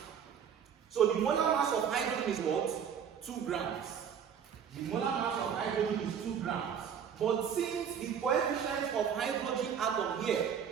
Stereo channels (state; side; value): quieter; left; 7.9 dB